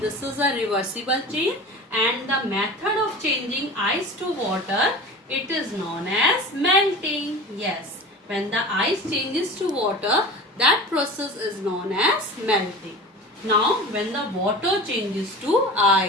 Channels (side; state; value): both; normal; correlation 0.35